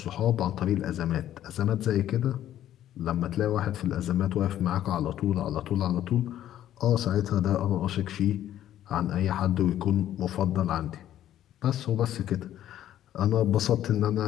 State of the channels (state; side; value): quieter; right; 12.0 dB